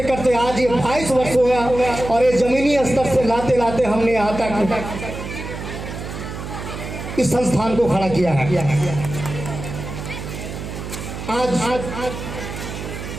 करते आज ये 22 वर्ष हो गया और ये जमीनी स्तर से लाते लाते हमने यहाँ तक इस संस्थान को खड़ा किया है। आज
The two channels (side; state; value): right; noise; hum, 8 dB below the sound